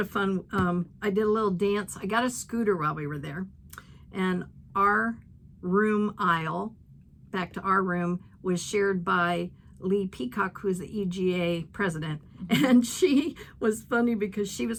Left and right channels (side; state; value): both; identical; correlation 1.00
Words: fun. I did a little dance. I got a scooter while we were there. And our room aisle, back to our room, was shared by Lee Peacock, who's the EGA president. And she was funny because she was